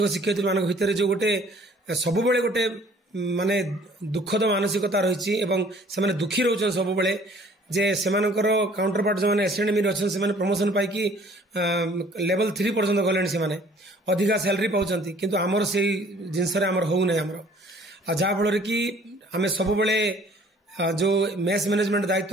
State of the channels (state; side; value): normal; both; correlation 0.55